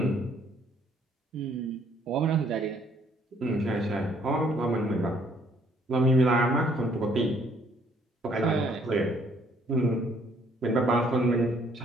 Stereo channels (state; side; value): normal; both; correlation 0.64